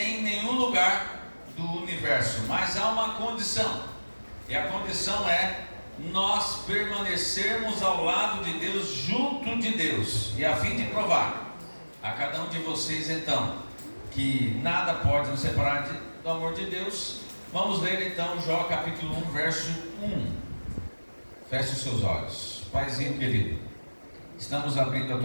nenhum lugar do universo. Mas há uma condição. E a condição é nós permanecermos ao lado de Deus, junto de Deus. E a fim de provar a cada um de vocês, então, que nada pode nos separar do amor de Deus. Vamos ler então Jó capítulo 1, verso 1. Feche os seus olhos. Paizinho querido, estamos abrindo a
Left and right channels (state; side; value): inverted; both; correlation -1.00